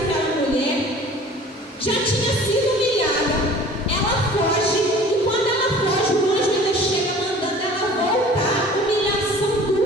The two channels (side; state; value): both; normal; correlation 0.46